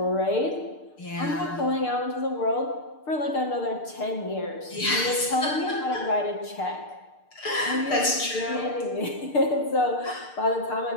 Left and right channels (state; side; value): late; right; 6.6 ms